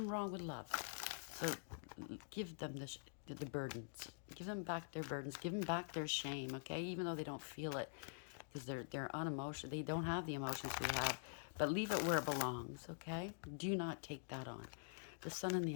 wrong with love. So give them the burdens. Give them back their burdens. Give them back their shame, okay? Even though they don't feel it, because they're unemotional. They don't have the emotions we have. But leave it where it belongs, okay? Do not take that on. The Sun in the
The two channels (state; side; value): silent; right; digital silence